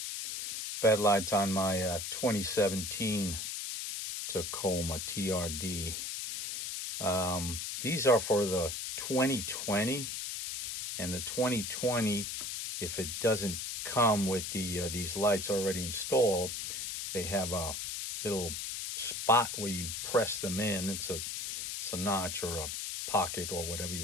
bed lights on my 2017 Tacoma TRD. These are for the 2020, and the 2020, if it doesn't come with these lights already installed, they have a little spot where you press them in. It's a notch or a pocket or whatever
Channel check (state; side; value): noise; left; hiss, 4 dB below the sound